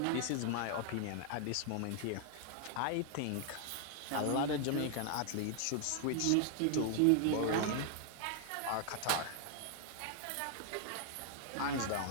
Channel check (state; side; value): different; both; correlation 0.00